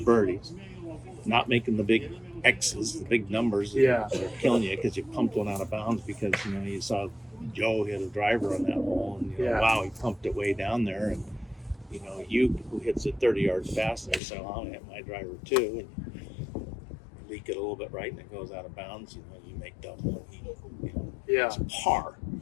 not making the big X's, the big numbers that are killing you because you pumped one out of bounds because, you saw Joe hit a driver on that hole and, wow, he pumped it way down there. And, you who hits it 30 yards faster, so I'm going to hit my driver too. And leak it a little bit right and it goes out of bounds, you make double. It's par.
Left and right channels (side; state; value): right; drops out; at 14.2 s